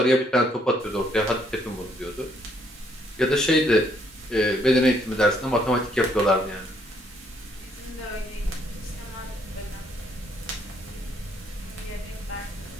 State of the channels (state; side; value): normal; both; correlation 0.69